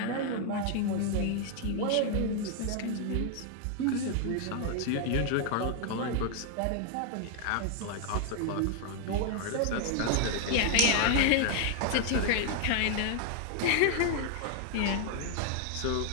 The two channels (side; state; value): both; different; correlation 0.00